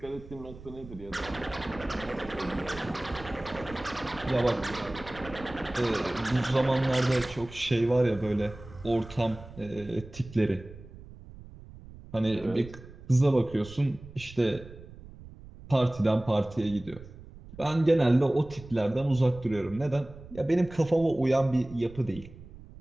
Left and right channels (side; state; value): right; noise; rumble, 17 dB below the sound